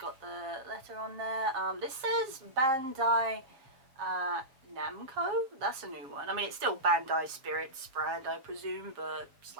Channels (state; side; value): late; left; 7.5 ms